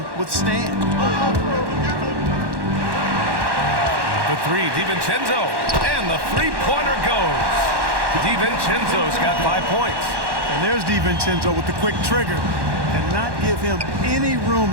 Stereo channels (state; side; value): late; left; 1.1 ms